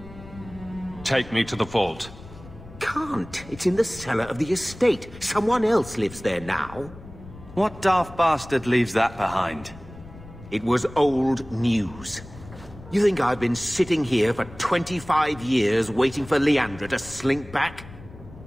Take me to the vault. Can't. It's in the cellar of the estate. Someone else lives there now. What daft bastard leaves that behind? It was old news. You think I've been sitting here for 25 years waiting for Leandra to slink back?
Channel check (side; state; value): left; noise; rumble, 17 dB below the sound